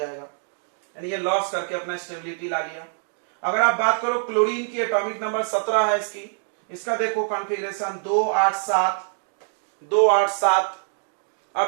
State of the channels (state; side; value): silent; left; digital silence